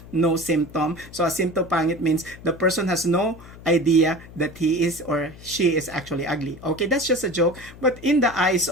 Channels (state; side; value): noise; left; hum, 18 dB below the sound